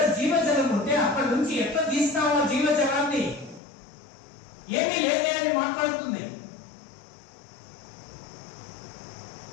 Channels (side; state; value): right; drops out; at 3.6 s